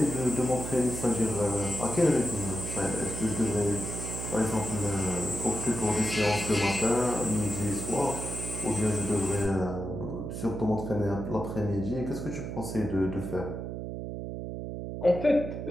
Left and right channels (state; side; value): noise; right; hum, 6 dB below the sound